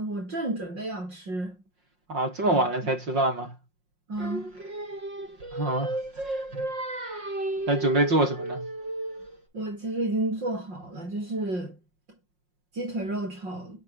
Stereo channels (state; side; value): late; left; 5.6 ms